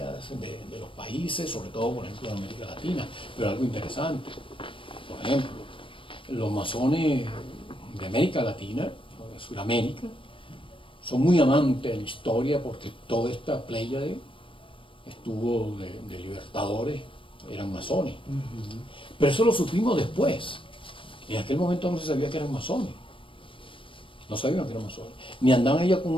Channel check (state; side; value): late; right; 0.25 ms